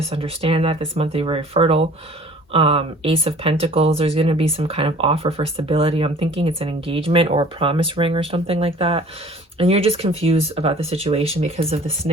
understand that this month you're very fertile. Ace of Pentacles, there's going to be some kind of offer for stability. I'm thinking it's an engagement or a promise ring or something like that. And you're just confused about the situation because of the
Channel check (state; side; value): normal; both; correlation 0.49